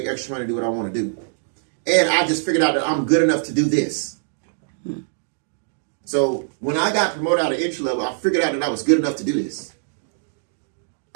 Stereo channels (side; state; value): left; silent; digital silence